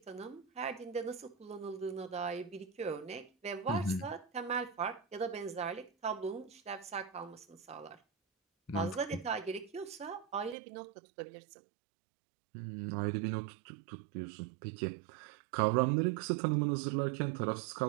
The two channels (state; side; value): drops out; left; at 10.6 s